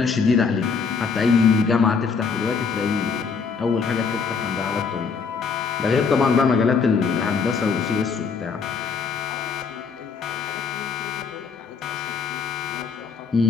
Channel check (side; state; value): right; quieter; 5.4 dB